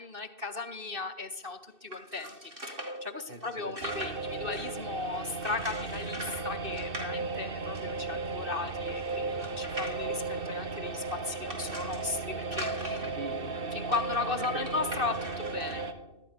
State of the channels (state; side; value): late; left; 2.6 ms